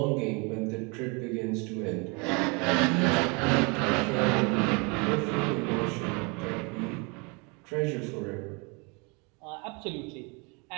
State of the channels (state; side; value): quieter; left; 30.8 dB